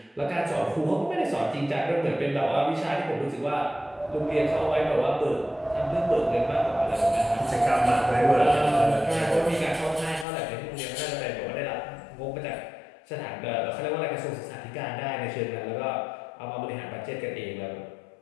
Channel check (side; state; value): right; drops out; at 10.2 s